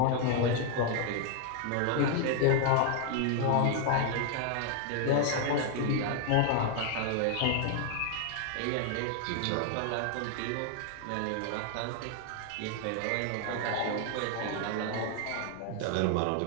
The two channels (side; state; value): both; different; correlation 0.00